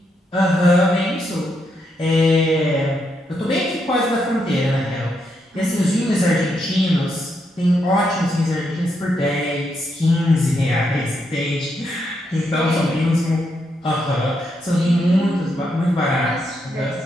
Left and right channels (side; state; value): both; normal; correlation 0.80